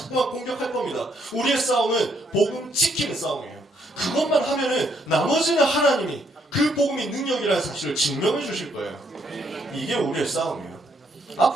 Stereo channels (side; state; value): both; normal; correlation 0.72